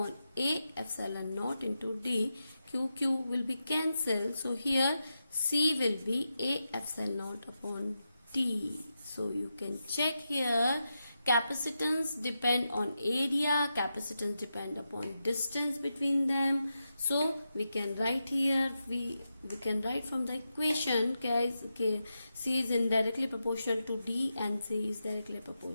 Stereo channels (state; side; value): inverted; both; correlation -0.88